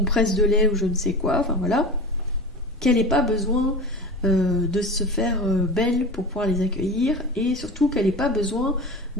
de lait ou je ne sais quoi, enfin voilà, qu'elle n'ait pas besoin de se faire belle pour pouvoir les accueillir, et surtout qu'elle n'ait pas besoin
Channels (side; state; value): both; normal; correlation 0.32